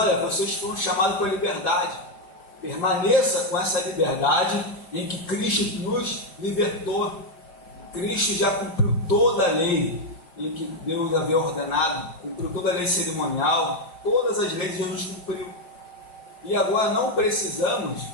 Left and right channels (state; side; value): late; right; 5.6 ms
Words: vocês foram chamados para a liberdade. Permaneça com essa liberdade em que Cristo nos libertou. Cristo já cumpriu toda a lei em que Deus havia ordenado, cumpriu toda a lei cerimonial, todas as leis Jesus cumpriu. E agora não precisamos,